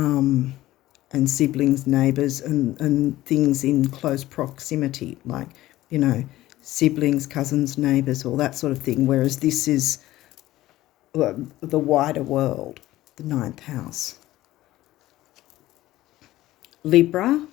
siblings, neighbours, and things in close proximity, like, siblings, cousins, neighbours, all that sort of thing, whereas this is the wider world, the 9th house. Libra,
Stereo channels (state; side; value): quieter; right; 15.9 dB